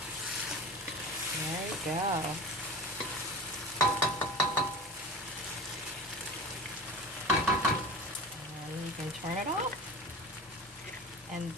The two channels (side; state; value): both; normal; correlation 0.32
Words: There you go. You can turn it off, and